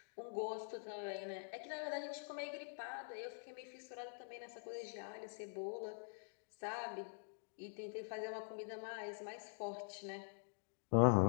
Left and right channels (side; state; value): right; silent; digital silence